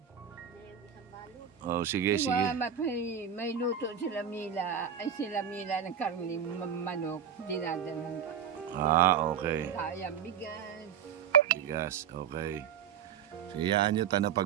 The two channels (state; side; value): quieter; left; 8.0 dB